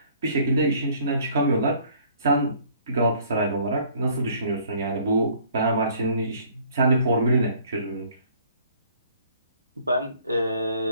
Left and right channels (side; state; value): both; inverted; correlation -0.58